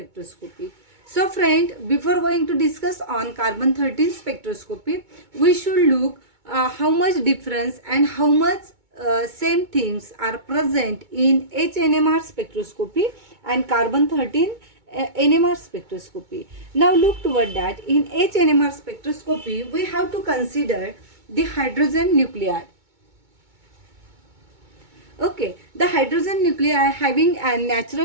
So friend, before going to discuss on carbon 13 spectroscopy, we should look how much difference and how much same things are present in HNMR spectroscopy and carbon 13 NMR spectroscopy. Now look toward that. In HNMR spectroscopy, we have to consider the hydrogen nuclei. Okay, the hydrogen nuclei having a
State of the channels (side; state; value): left; late; 2.2 ms